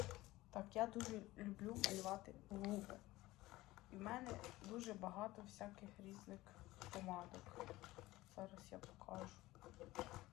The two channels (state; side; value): quieter; right; 18.2 dB